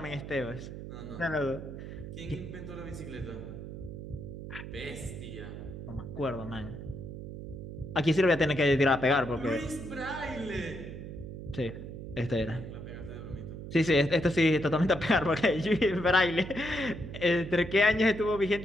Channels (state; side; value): noise; right; hum, 10 dB below the sound